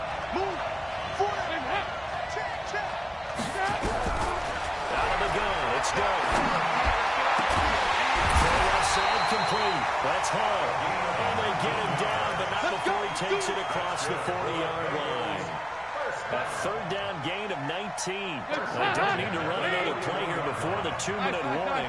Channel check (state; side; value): identical; both; correlation 1.00